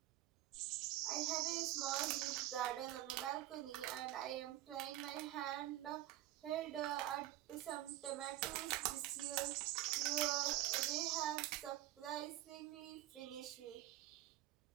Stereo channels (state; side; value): quieter; left; 14.9 dB